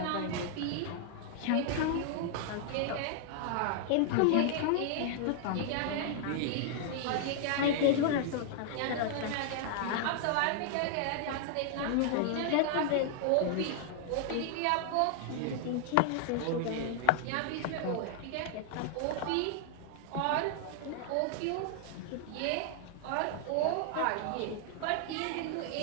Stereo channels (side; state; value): both; different; correlation -0.01